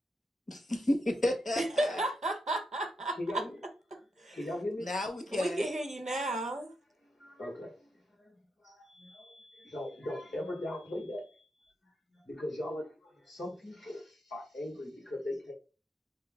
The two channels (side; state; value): both; normal; correlation 0.84